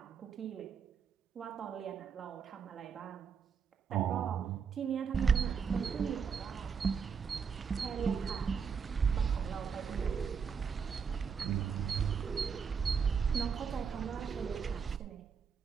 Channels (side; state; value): left; quieter; 6.3 dB